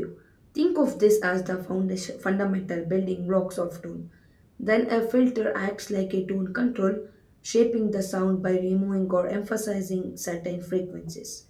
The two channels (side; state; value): both; identical; correlation 1.00